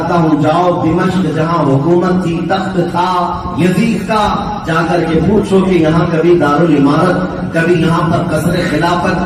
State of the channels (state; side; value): identical; both; correlation 1.00